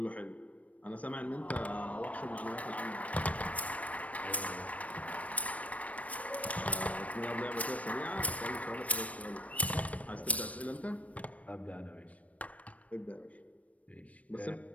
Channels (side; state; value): right; late; 0.067 ms